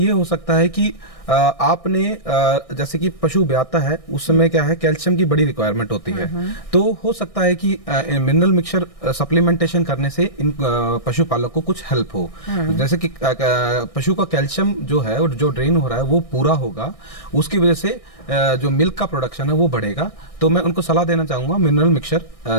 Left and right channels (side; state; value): right; late; 1.6 ms